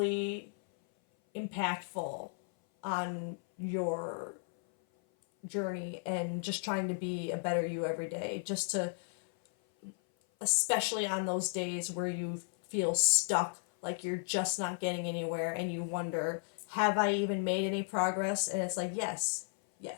impactful on your journey and just trying to be a better you every day, just to, especially on those days where you feel stuck, like you're just not getting anywhere and you wonder, have I even made any progress? And it's like, yes,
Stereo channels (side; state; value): right; silent; 55 dB below the other